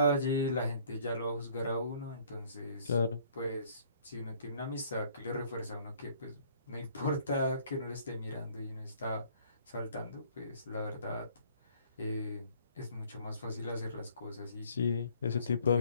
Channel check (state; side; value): inverted; both; correlation -0.58